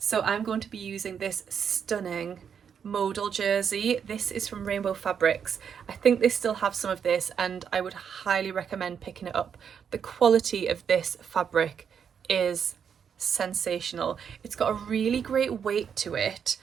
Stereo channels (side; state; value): left; quieter; 7.4 dB